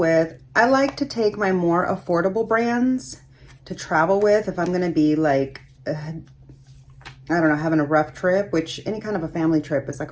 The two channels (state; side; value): identical; both; correlation 1.00